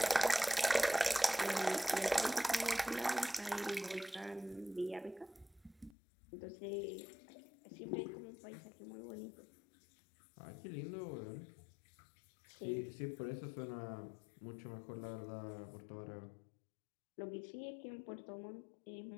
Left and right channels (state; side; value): drops out; right; at 6.0 s